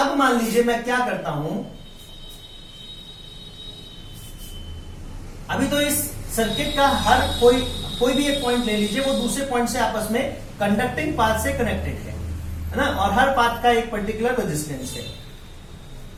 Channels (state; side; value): identical; both; correlation 1.00